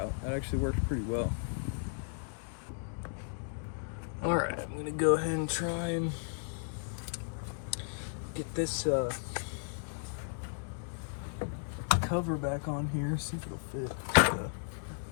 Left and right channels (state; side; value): silent; right; digital silence